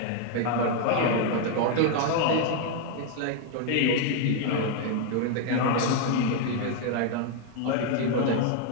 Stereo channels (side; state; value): both; different; correlation 0.01